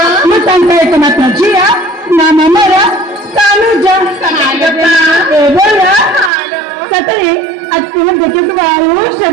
मातांका एक मात्र जिया नामा मरा कानुजा हालो माँ बोला सतरे आज तुम्हें देखे तो बाहर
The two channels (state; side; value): drops out; left; at 6.3 s